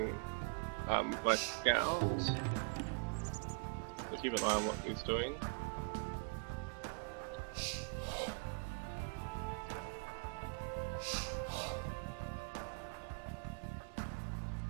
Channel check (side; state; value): left; quieter; 34.2 dB